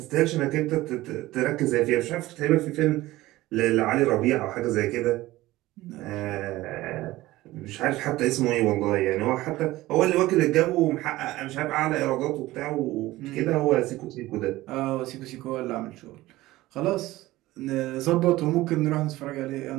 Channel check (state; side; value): quieter; left; 17.5 dB